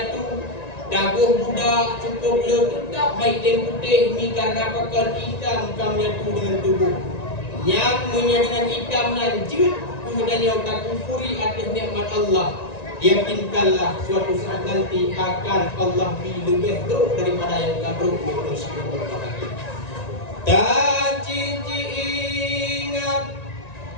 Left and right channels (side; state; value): right; late; 1.9 ms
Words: daguh budak cukup tetap hitam putih mi karena pakaian hitam kamu menyatu dengan tubuh. Yang dengan hitamnya jut gedanya tak kufuri atas nikmat Allah. Yakinkanlah suatu saat nanti akan Allah lebih teruk daripada yang kabruk manusia berbahagia. Tak cici ingat